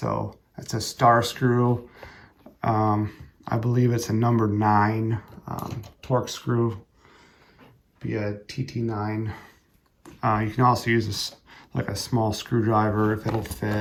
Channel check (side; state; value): both; identical; correlation 1.00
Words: that's a star screw. I believe it's a number 9 torque screw, be a TT9. You can also use like a small screwdriver if it'll